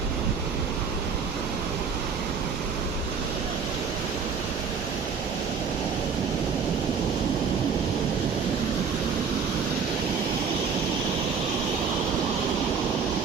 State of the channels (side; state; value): left; quieter; 5.9 dB